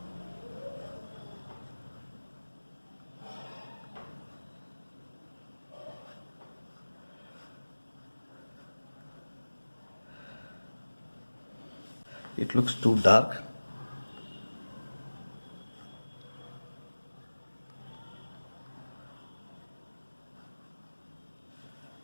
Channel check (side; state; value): both; inverted; correlation -1.00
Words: It looks too dark.